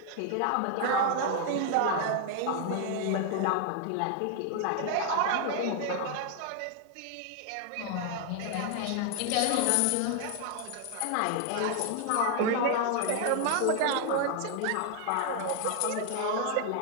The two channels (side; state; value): both; different; correlation 0.00